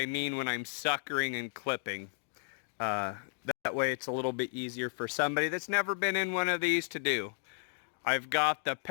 mean when I'm suckering and clipping. That way it's a little bit easier for somebody that's never been in one of these to do. I've got the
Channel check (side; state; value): right; silent; digital silence